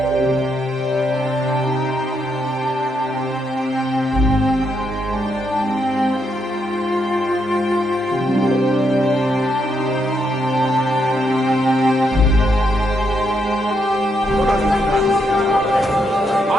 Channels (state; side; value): normal; both; correlation 0.79